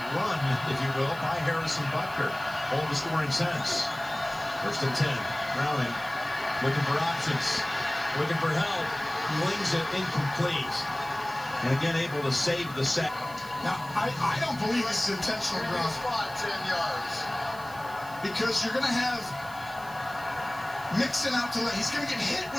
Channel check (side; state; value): right; noise; hiss, 19 dB below the sound